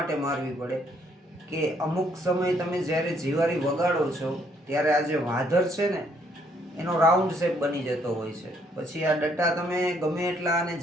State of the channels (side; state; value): both; normal; correlation 0.68